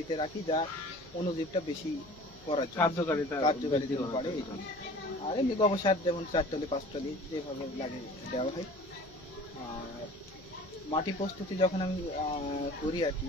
রাখি, যা অণুজীবটা বেশি করার জন্য, কার্যকারিতা কার্যকারিতা বৃদ্ধি বাড়ে করার এই জন্য। জন্য। আর এমনি গোবর সার যেমন 4 টলি 5 টলি যেভাবে লাগে দেওয়া হয়। আর মাটি প্রস্তুতি যখন আমি করি আর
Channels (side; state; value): left; noise; hum, 24 dB below the sound